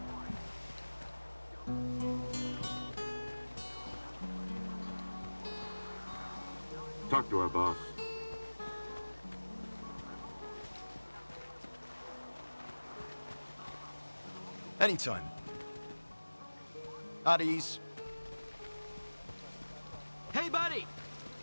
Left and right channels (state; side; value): inverted; both; correlation -1.00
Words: Talk to our boss. Anytime. At ease. Hey, buddy!